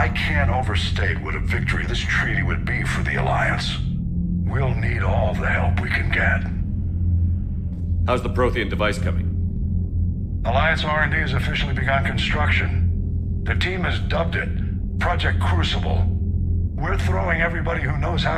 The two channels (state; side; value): identical; both; correlation 1.00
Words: can't overstate what a victory this treaty would be for the Alliance. We'll need all the help we can get. How's the Prothean device coming? Alliance R&D has officially begun construction. The team has dubbed it Project Crucible. We're throwing everybody who knows how